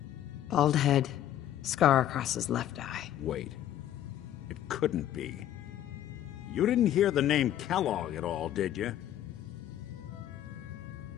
Bald head, scar across his left eye. Wait. It couldn't be. You didn't hear the name Kellogg at all, did you?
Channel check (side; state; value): right; quieter; 11.9 dB